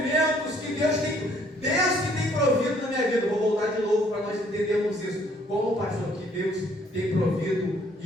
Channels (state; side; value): normal; both; correlation 0.63